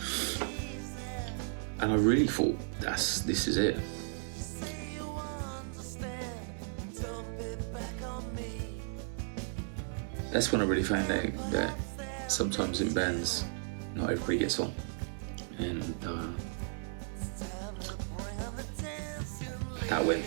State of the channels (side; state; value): left; silent; digital silence